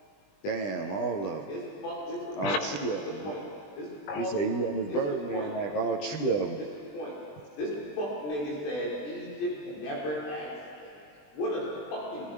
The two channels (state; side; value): late; right; 20 ms